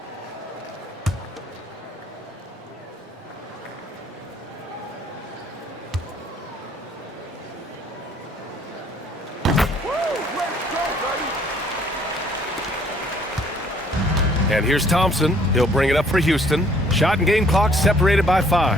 And here's Thompson. He'll bring it up for Houston. Shot and game clock separated by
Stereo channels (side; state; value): both; normal; correlation 0.61